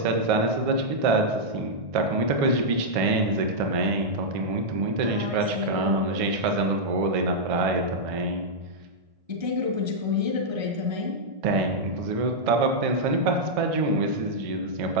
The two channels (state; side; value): late; left; 1.6 ms